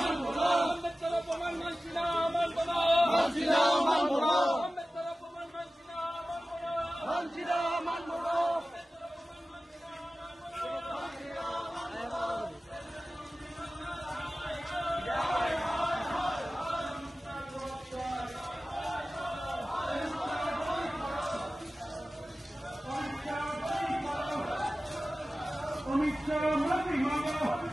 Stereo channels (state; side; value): normal; both; correlation 0.96